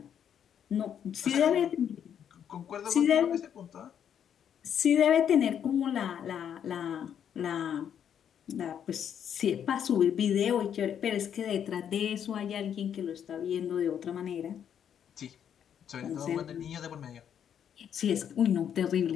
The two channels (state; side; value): quieter; right; 8.8 dB